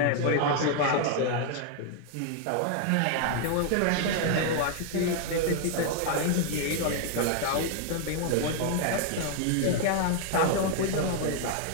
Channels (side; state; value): both; different; correlation 0.00